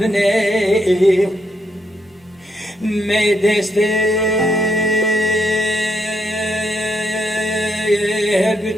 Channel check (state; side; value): normal; both; correlation 0.77